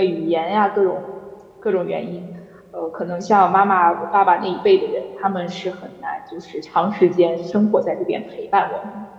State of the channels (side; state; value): both; identical; correlation 1.00